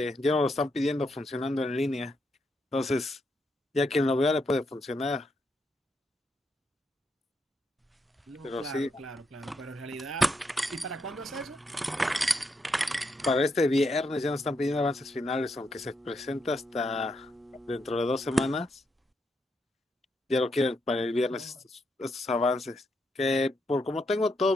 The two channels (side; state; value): both; normal; correlation 0.80